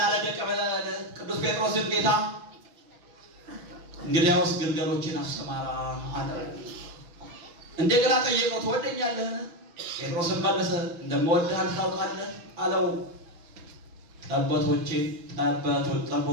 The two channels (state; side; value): late; left; 6.2 ms